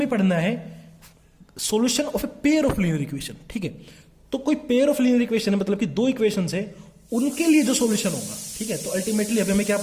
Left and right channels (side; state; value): both; identical; correlation 1.00